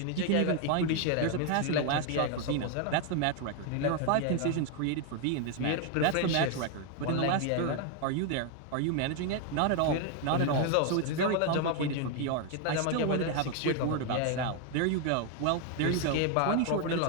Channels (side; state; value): both; different; correlation 0.01